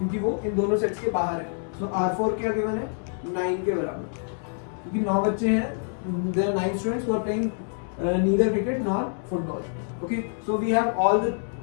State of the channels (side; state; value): right; silent; 57 dB below the other